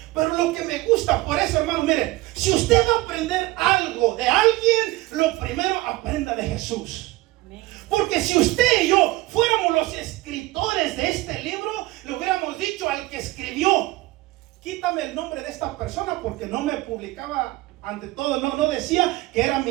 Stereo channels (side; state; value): left; quieter; 19.3 dB